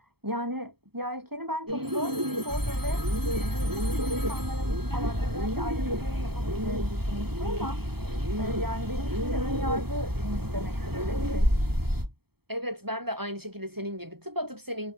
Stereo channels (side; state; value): left; late; 0.96 ms